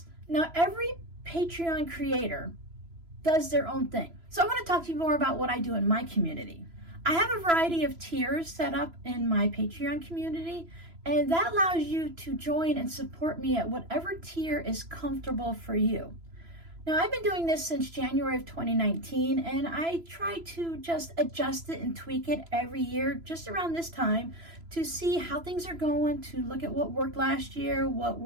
Now, every Patreon creator does their own thing. So I want to talk to you more about what I do in my community. I have a variety of tiers set up in my Patreon community, and that allows you to join and support me at whatever tier is comfortable for you. Now, I've been doing this since January of 2019, and I try to just adjust it and tweak it every year, just around this time, to see how things are going, to look at what worked last year, what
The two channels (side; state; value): left; late; 3.0 ms